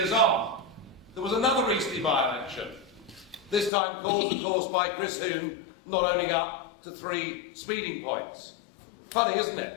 on, there was another Eastleigh by-election, this time caused, of course, by Chris Huhne not owning up to 3 speeding points. Funny, isn't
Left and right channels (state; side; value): drops out; right; at 3.7 s